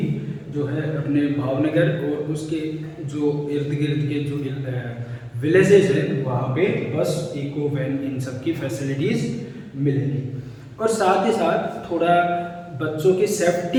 जो है अपने भावनगर और उसके जो इर्द गिर्द के जो विलेजेस हैं वहाँ पे बस, इको, वैन, इन सब की फैसिलिटीज़ मिलेंगी। और साथ ही साथ थोड़ा बच्चों की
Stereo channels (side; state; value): both; identical; correlation 1.00